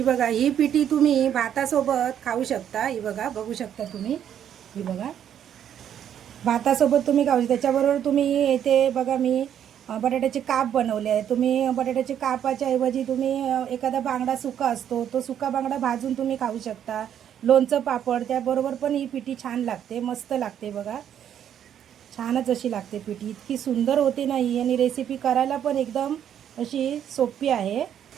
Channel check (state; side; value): quieter; left; 9.6 dB